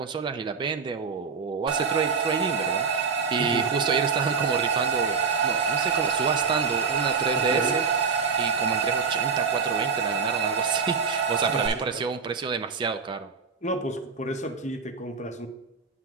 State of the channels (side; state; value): left; quieter; 5.5 dB